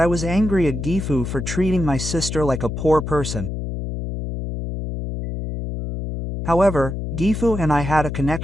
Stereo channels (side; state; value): left; noise; hum, 5 dB below the sound